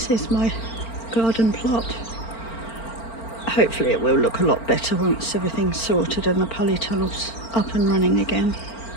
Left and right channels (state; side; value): late; right; 4.4 ms